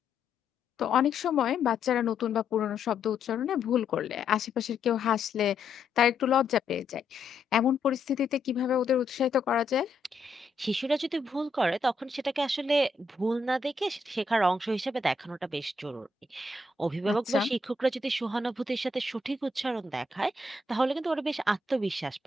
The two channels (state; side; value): quieter; right; 3.5 dB